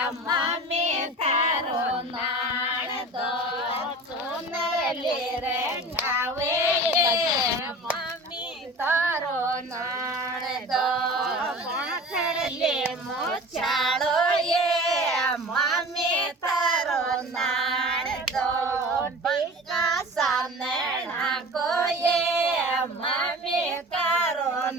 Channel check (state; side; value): normal; both; correlation 0.38